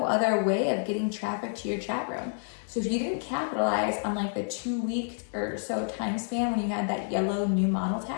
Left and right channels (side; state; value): right; silent; digital silence